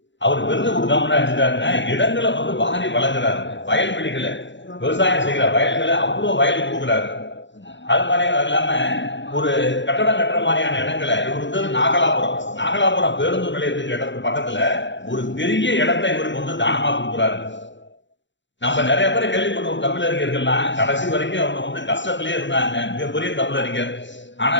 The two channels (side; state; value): right; late; 0.54 ms